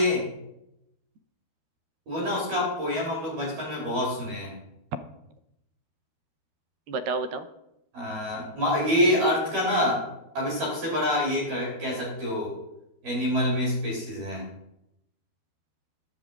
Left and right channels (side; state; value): left; late; 12 ms